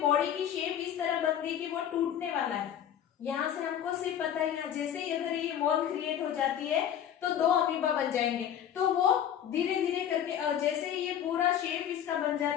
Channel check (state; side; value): quieter; right; 9.8 dB